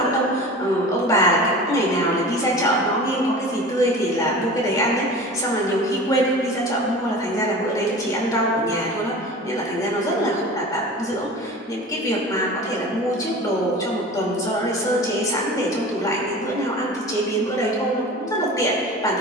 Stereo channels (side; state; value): both; normal; correlation 0.37